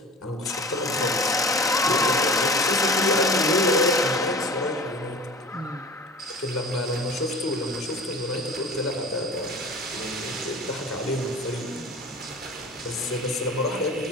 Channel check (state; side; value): normal; both; correlation 0.39